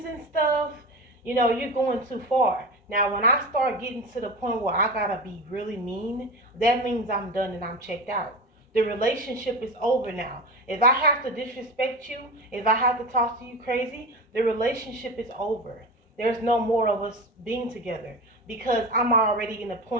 and stuff, you're going too far. Now, when I start getting to the point where I gotta be really mean, that means I'm done and I'm checked out. The relationship is over now. If I have to disrespect you, if I have to talk to you crazy, the relationship is over. There's no more of us being together because I'm already in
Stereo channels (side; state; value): both; normal; correlation 0.27